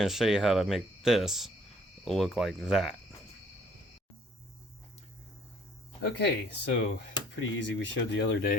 to show you how to make this look like that. Okay, so pretty easy. We showed the other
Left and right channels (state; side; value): normal; both; correlation 0.59